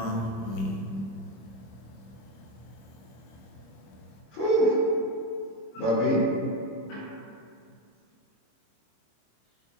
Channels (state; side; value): late; right; 26 ms